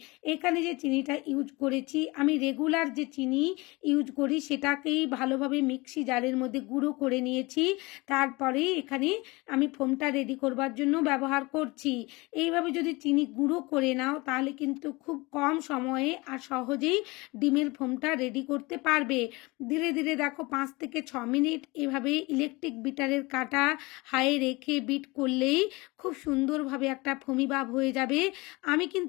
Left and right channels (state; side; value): quieter; right; 23.8 dB